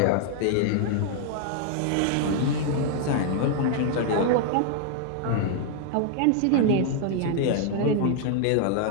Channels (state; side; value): different; both; correlation 0.00